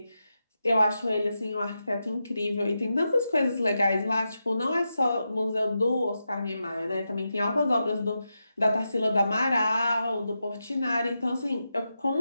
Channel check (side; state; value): both; inverted; correlation -0.88